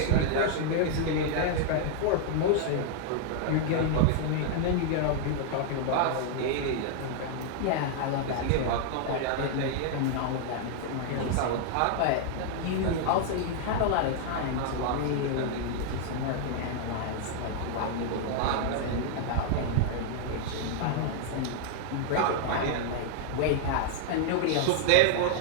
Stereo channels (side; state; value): both; different; correlation -0.01